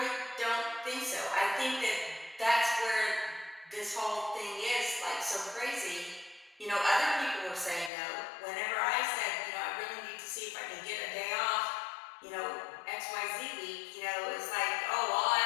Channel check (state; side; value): drops out; right; at 7.9 s